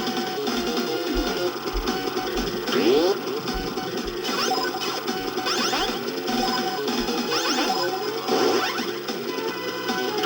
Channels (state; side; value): identical; both; correlation 1.00